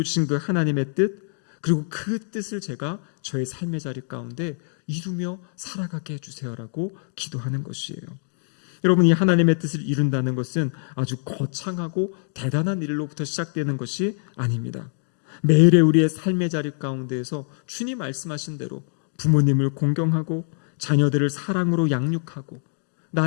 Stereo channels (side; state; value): right; silent; digital silence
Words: 그 하나님의 뜻, 그리고 그 뜻을 제가 저의 삶의 자리 가운데 이루며 살아가게 해주세요라고 기도하는 것이에요. 여러분, 이 하나님의 뜻을 이룬다는 것은 아주 거창하고 대단한 일로부터 시작되는 것이 아닙니다. 매일의 우리의 삶의 자리 가운데에서 주님 말씀하신 대로 부모님을 공경하고 자녀들을 사랑으로 양육하고